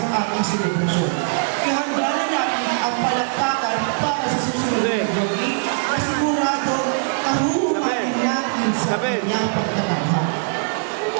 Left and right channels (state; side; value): silent; left; 65 dB below the other